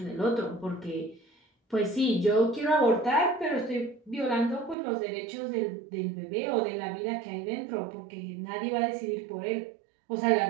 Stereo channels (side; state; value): left; drops out; at 4.8 s